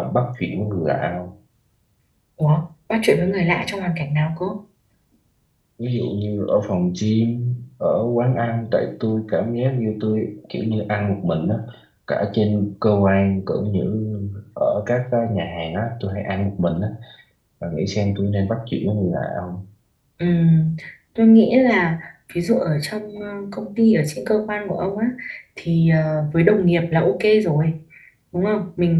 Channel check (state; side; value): identical; both; correlation 1.00